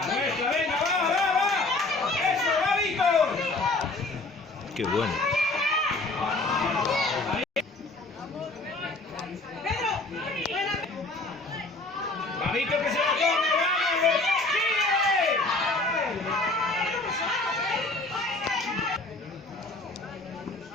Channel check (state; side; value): quieter; right; 3.1 dB